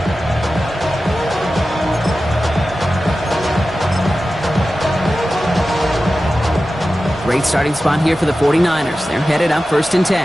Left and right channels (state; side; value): normal; both; correlation 0.94